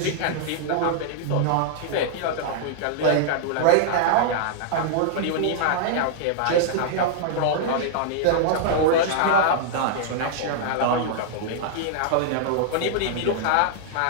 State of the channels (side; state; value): both; different; correlation -0.01